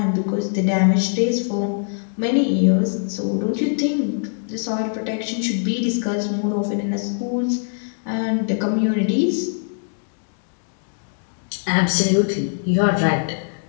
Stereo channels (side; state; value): right; silent; digital silence